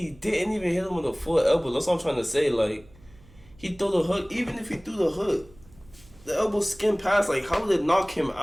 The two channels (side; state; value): right; noise; hum, 25 dB below the sound